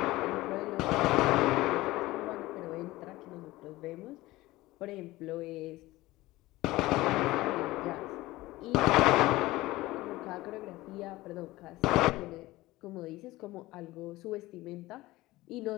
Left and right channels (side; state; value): right; quieter; 18.5 dB